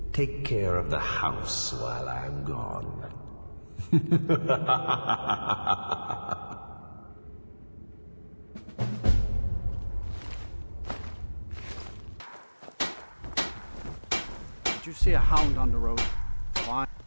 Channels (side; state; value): both; inverted; correlation -1.00